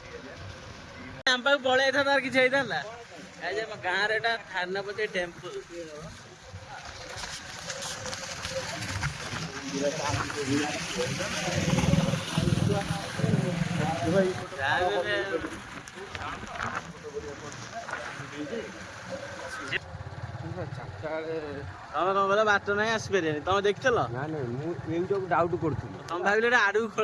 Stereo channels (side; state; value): both; identical; correlation 1.00